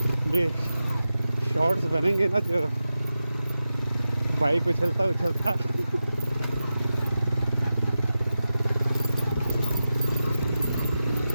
ये शॉर्ट्स बनेंगे ना जो बाइक उछलता उछलता।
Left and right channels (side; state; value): both; inverted; correlation -0.93